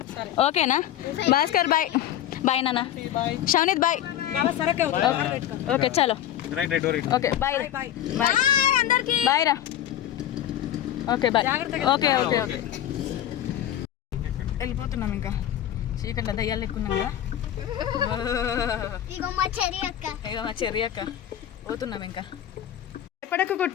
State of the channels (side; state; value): right; quieter; 11.5 dB